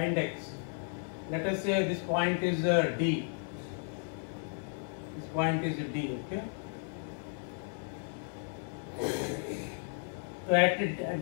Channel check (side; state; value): right; silent; 55 dB below the other